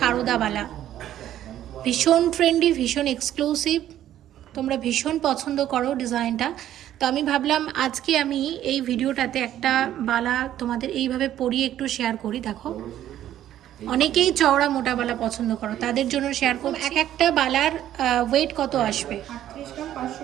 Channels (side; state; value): left; quieter; 12.0 dB